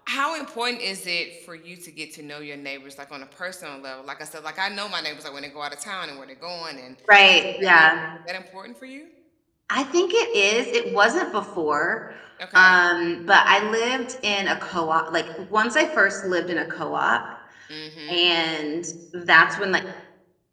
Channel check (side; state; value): both; identical; correlation 1.00